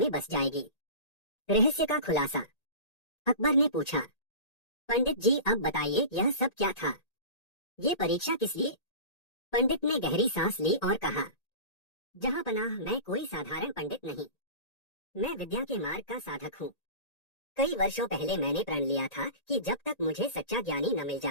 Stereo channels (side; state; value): right; late; 1.8 ms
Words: बस जाएगी। रहस्य का खुलासा। अकबर ने पूछा, पंडित जी अब बताइए, यह सब क्या था? ये परीक्षा किस लिए? पंडित ने गहरी सांस ली और कहा, जहां पनाह, मैं कोई साधारण पंडित नहीं। मैं विद्या के मार्ग का साधक हूँ। कई वर्षों पहले मैंने प्रण लिया था कि जब तक मुझे सच्चा ज्ञानी न मिल